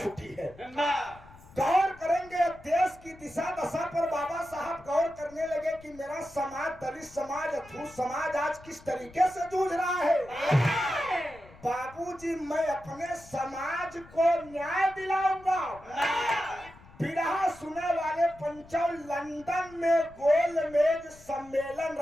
है। गौर करेंगे देश की दिशा दशा पर बाबा साहब गौर करने लगे कि मेरा समाज, दलित समाज, अछूत समाज आज किस तरीके से जूझ रहा है। बाबूजी, मैं अपने समाज को न्याय दिलाऊंगा। बिरहा सुने वाले पंचों, लंदन में गोलमेज सम्मेलन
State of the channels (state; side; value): noise; left; rumble, 22 dB below the sound